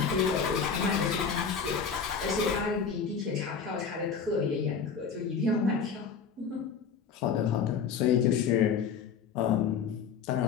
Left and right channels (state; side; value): quieter; right; 6.3 dB